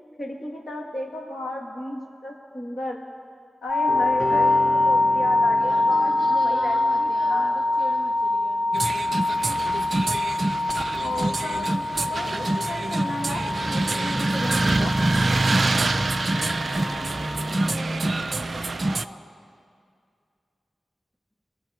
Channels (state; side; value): normal; both; correlation 0.93